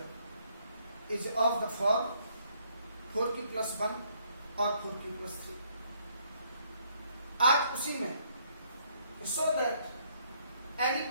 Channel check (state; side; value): inverted; both; correlation -0.68